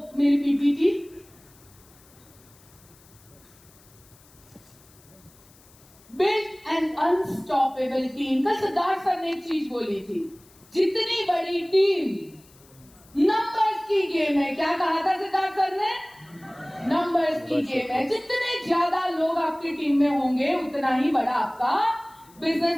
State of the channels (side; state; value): left; noise; hiss, 27 dB below the sound